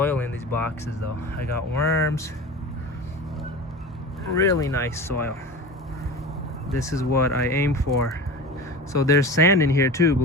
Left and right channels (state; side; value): normal; both; correlation 0.32